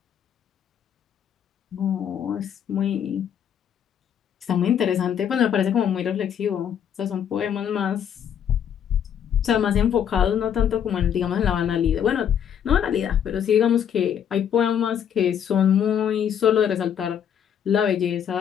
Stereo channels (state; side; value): quieter; right; 8.8 dB